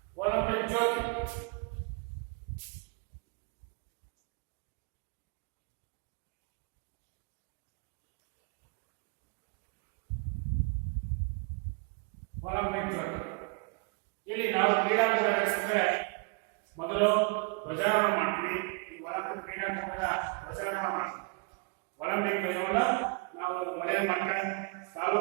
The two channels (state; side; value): quieter; left; 33.7 dB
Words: ಒಲಿಂಪಿಕ್ ಜ್ಯೋತಿ ಇಲ್ಲಿ ನಾವು ಕ್ರೀಡಾಕೂಟ ನಡೆಸಿದ್ರೆ ಮೊದಲು ಧ್ವಜಾರೋಹಣ ಮಾಡ್ತೀವಿ. ಈ ಒಲಿಂಪಿಕ್ ಕ್ರೀಡಾಕೂಟದ ಧ್ವಜಾರೋಹಣ ಮಾಡ್ತೀವಿ. ಒಲಿಂಪಿಕ್ ಧ್ವಜವನ್ನು ನಾವು ವಲಯ ಮಟ್ಟ,